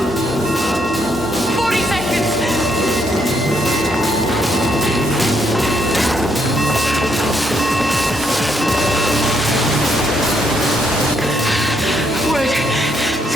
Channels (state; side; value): normal; both; correlation 0.74